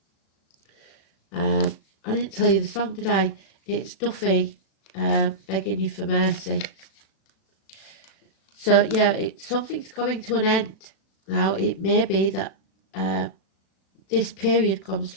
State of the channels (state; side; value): late; right; 36 ms